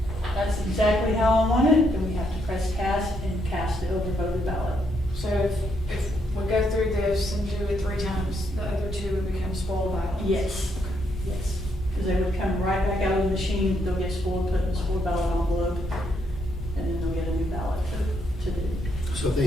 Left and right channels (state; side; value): normal; both; correlation 0.75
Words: that's exactly how I want it, then we have to press cast and cast the overvoted ballot. So if we go through this and do it 3 times, the other 2 would become spoiled ballots? Yes, yes. Because they would come right back out of the machine, they'll get spoiled, put in the spoiled ballot envelope, and then they'll get a new ballot to do. So if they